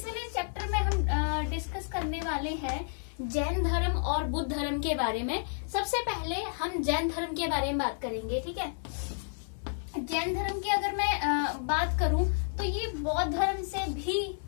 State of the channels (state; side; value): silent; right; 57 dB below the other